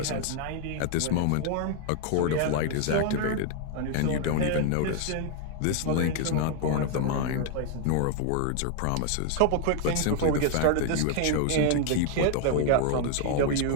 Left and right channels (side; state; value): both; different; correlation 0.00